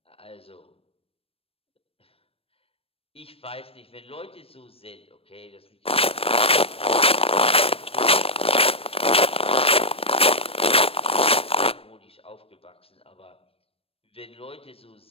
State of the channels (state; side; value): late; right; 0.28 ms